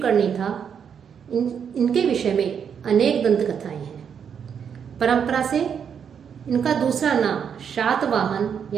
था। इनके विषय में अनेक दंत कथाएं हैं। परंपरा से इनका दूसरा नाम शातवाहन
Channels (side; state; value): left; quieter; 7.5 dB